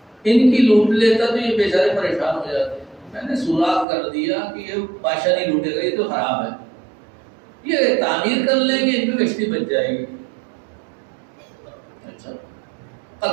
ان کی لوٹ لیتا تو یہ بیچارے پریشان ہو جاتے. میں نے سوراخ کر دیا کہ یہ بادشاہ نہیں لوٹے گا، یہ تو خراب ہے، یہ تعمیر کر لیں گے، ان کی کشتی بچ جائے گی. اچھا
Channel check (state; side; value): drops out; left; at 3.9 s